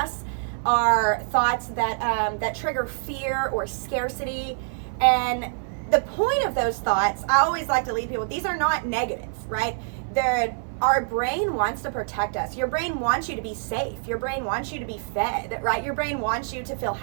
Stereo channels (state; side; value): silent; left; digital silence